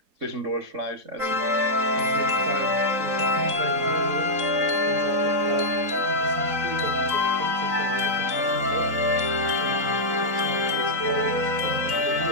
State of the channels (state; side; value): late; left; 3.9 ms